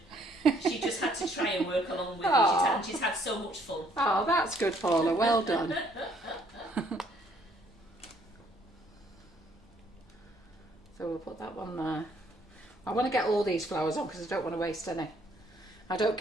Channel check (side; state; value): both; normal; correlation 0.65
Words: She just had to try and work along with Aw. you. She's had so much fun. Oh, that's good, Paula. Well done. So we'll put that one there. I want to get all these flowers on because I don't want to waste any. I don't